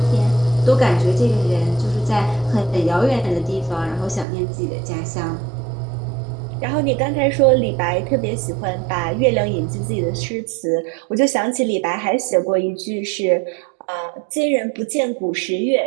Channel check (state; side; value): drops out; left; at 4.2 s